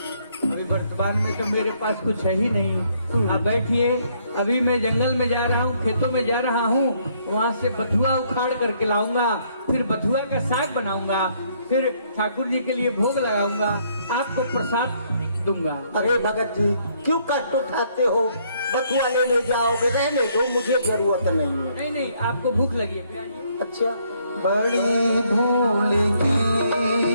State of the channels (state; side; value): inverted; both; correlation -0.68